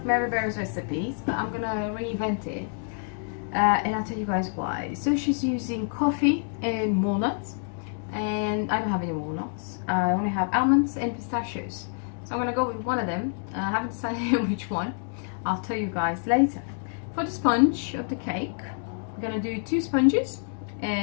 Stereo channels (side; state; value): right; silent; 60 dB below the other